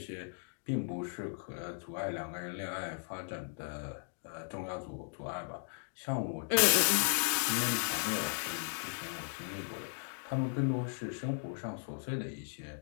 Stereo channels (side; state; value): right; silent; digital silence